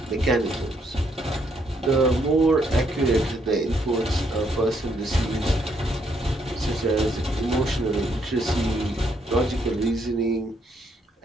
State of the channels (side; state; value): both; normal; correlation 0.73